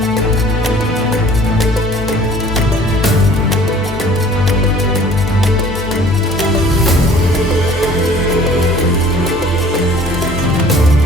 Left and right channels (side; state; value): both; normal; correlation 0.51